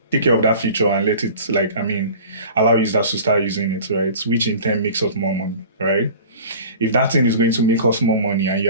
take care of that feature and allow users to start using it, right? Which in turn makes us more money, right? If that thing is going to make us more money and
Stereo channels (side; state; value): both; inverted; correlation -0.41